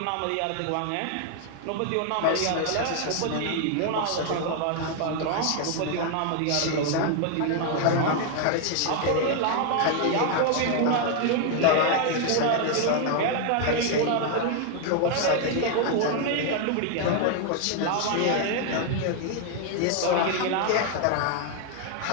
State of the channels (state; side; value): different; both; correlation 0.00